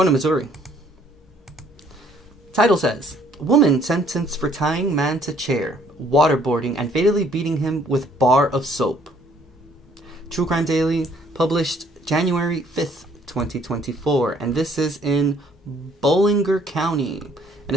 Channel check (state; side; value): normal; both; correlation 0.62